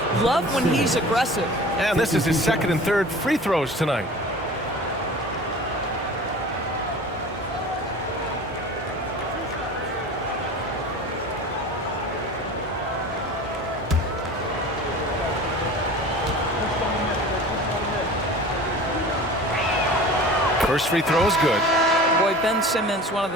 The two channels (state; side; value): normal; both; correlation 0.39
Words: Love when he's aggressive. And this is his second and third free throws tonight. First free throw is good. Boy, Ben Simmons, one of